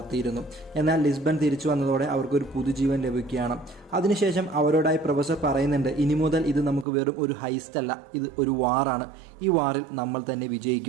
എന്നാൽ ലിസ്ബൺ തിരിച്ചു വന്നതോടെ അവർക്കൊരു പുതുജീവൻ ലഭിക്കുകയാണ്. അതിനുശേഷം അവരോടായി പ്രൊഫസർ പറയുന്നുണ്ട്, ഇനി മുതൽ ഇത് നമുക്ക് വെറും ഒരു ഹൈസ്റ്റ് അല്ല, ഇത് ഒരു വാറാണ്. ഈ വാറിൽ നമ്മൾ തന്നെ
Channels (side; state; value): left; drops out; at 6.9 s